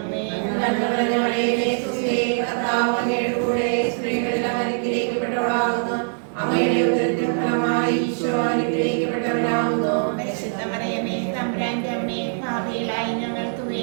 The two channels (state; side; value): silent; left; digital silence